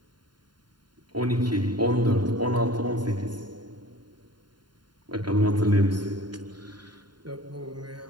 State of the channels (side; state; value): left; late; 0.71 ms